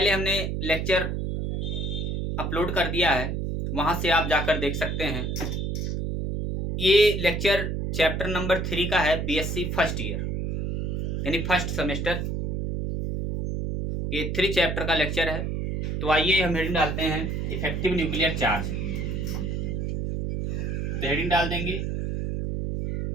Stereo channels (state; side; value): noise; right; hum, 1 dB below the sound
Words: हमने लेक्चर अपलोड कर दिया है, वहां से आप जाकर देख सकते हैं। ये लेक्चर चैप्टर नंबर 3 का है, बीएससी फर्स्ट ईयर यानी फर्स्ट सेमेस्टर। ये 3 चैप्टर का लेक्चर है। तो आइए हम हेडिंग डालते हैं इफेक्टिव न्यूक्लियर चार्ज। तो हेडिंग डाल देंगे